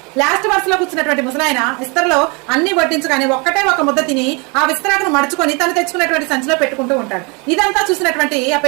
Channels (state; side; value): quieter; left; 30.6 dB